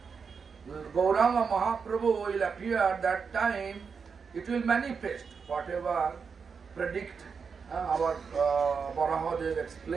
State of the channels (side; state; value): left; quieter; 5.8 dB